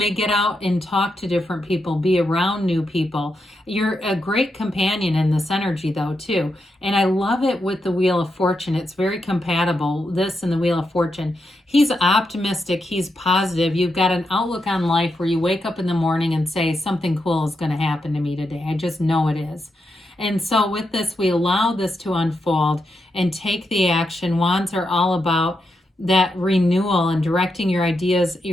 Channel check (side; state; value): both; normal; correlation 0.84